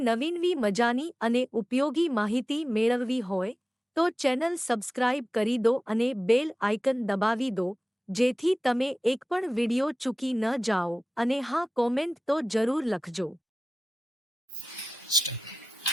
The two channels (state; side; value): normal; both; correlation 0.95